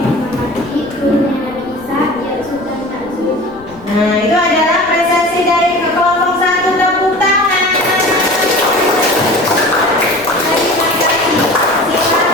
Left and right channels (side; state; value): left; noise; rumble, 23 dB below the sound